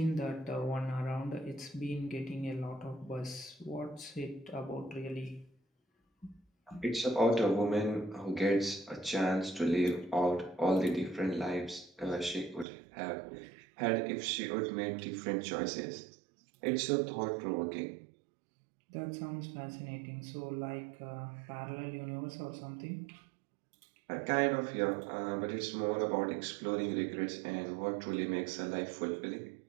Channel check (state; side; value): drops out; left; at 12.7 s